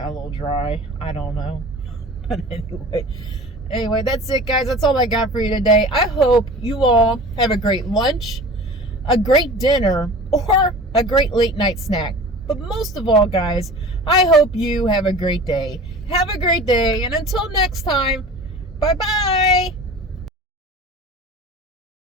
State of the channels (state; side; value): normal; both; correlation 0.39